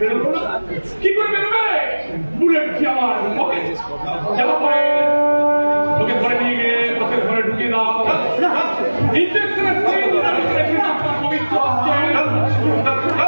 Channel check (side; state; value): both; inverted; correlation -1.00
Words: বেরোলো না কি করে বেরোবে বুলেট কি আমার যাওয়া পরে ওকে ধরে নিয়ে গিয়ে তোকে ঘরে ঢুকিয়ে দাও ইঞ্জেকশনের পবিত্র